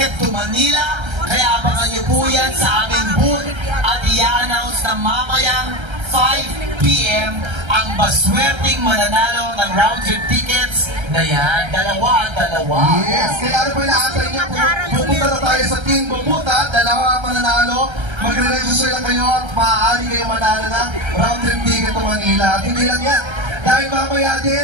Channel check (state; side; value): late; left; 1.3 ms